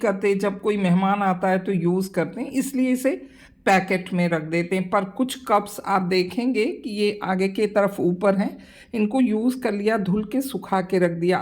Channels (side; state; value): both; identical; correlation 1.00